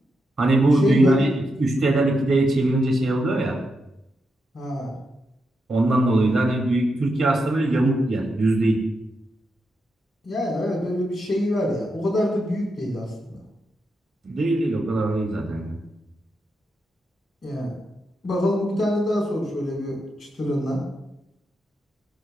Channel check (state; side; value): normal; both; correlation 0.84